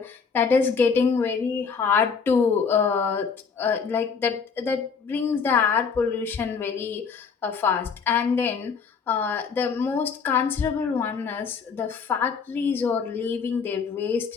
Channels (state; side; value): quieter; right; 5.7 dB